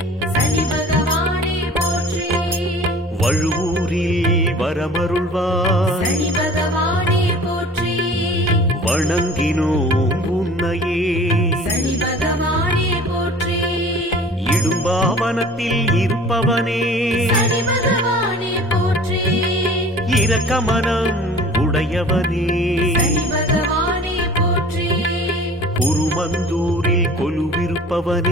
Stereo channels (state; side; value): normal; both; correlation 0.45